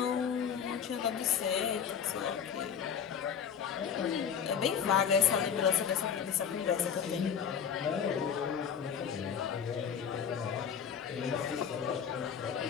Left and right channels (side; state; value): right; quieter; 7.6 dB